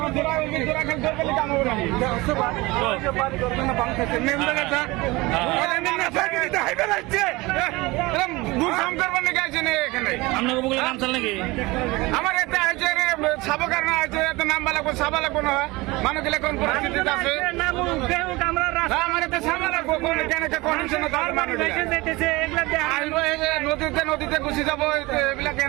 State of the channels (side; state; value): left; quieter; 22.1 dB